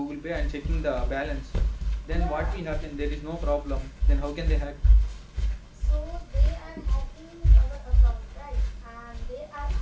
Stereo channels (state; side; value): identical; both; correlation 1.00